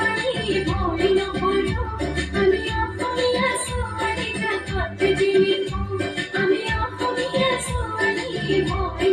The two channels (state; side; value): identical; both; correlation 1.00